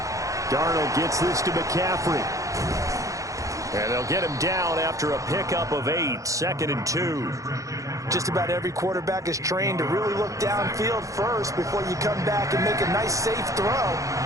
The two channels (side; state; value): left; late; 0.16 ms